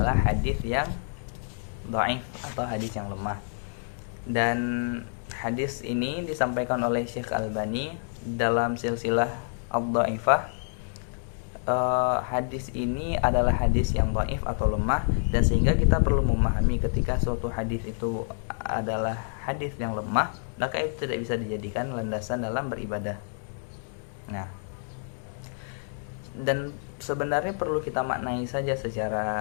hadis yang dhaif atau hadis yang lemah. Dan hadis ini disampaikan oleh Syekh Albani dalam silsilah ad-dhaifah. Hadis ini adalah hadis yang dhaif atau lemah, dan sehingga kita perlu memahami ketika suatu hadis itu adalah hadis yang lemah, maka itu tidak bisa dijadikan landasan dalam beribadah. Nah, dan sebenarnya perlu kita maknai saja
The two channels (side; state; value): right; silent; digital silence